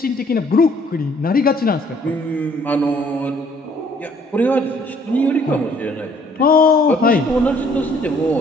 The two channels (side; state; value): both; normal; correlation 0.62